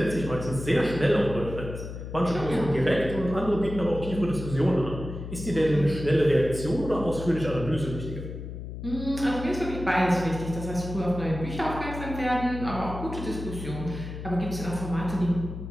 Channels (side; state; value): left; noise; hum, 9 dB below the sound